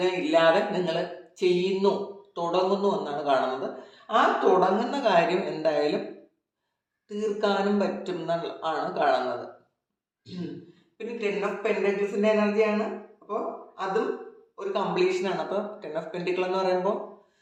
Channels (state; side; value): identical; both; correlation 1.00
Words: ഇല്ലാതെ നിങ്ങൾ ചെയ്യുന്നു, തുടങ്ങുന്നു എന്നാണ് കാണുന്നത്. ആ തുടങ്ങുന്ന കാര്യം എന്തായാലും തീർക്കാനും പറ്റും എന്നാണ് കാണുന്നത്. പിന്നെ 10 ഓഫ് പെൻറ്റക്കിൾസിൻ്റെ എനർജിയാണ്. അപ്പോൾ അതും ഒരു കംപ്ലീഷനാണ്. അപ്പോൾ 10 ഓഫ് പെൻറ്റിക്കിൾ എന്ന് പറയുമ്പോൾ